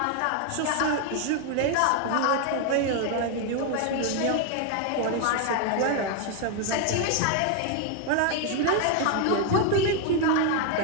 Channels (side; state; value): both; different; correlation 0.01